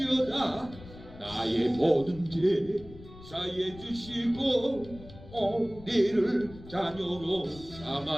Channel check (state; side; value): noise; left; rumble, 17 dB below the sound